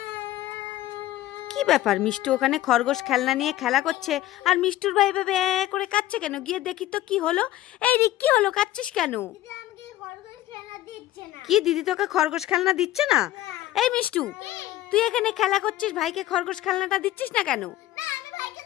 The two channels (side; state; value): right; quieter; 14.6 dB